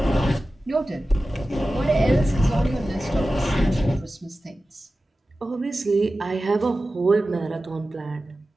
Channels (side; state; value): both; normal; correlation 0.95